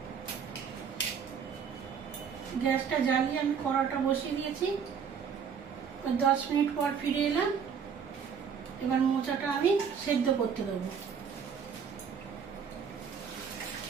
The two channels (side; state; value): left; quieter; 6.9 dB